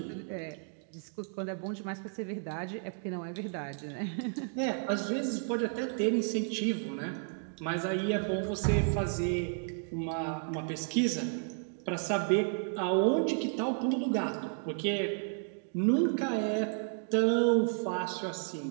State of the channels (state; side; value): silent; left; 56 dB below the other